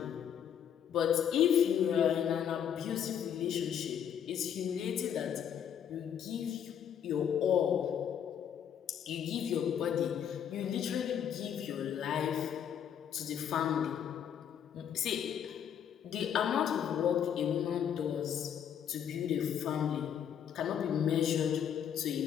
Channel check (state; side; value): quieter; right; 8.8 dB